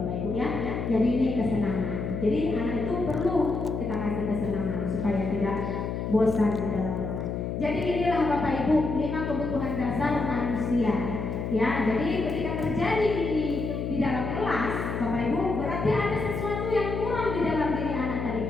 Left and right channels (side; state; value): left; noise; hum, 3 dB below the sound